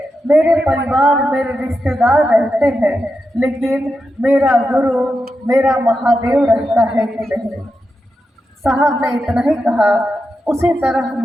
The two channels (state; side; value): normal; both; correlation 0.88